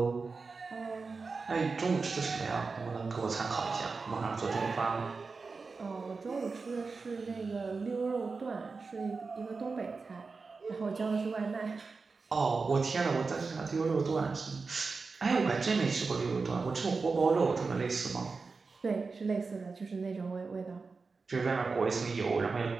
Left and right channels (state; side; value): quieter; left; 4.4 dB